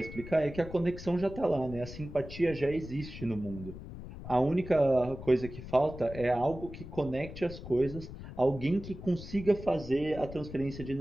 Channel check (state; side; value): noise; left; rumble, 12 dB below the sound